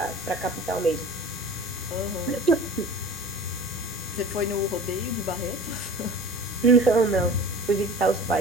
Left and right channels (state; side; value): normal; both; correlation 0.40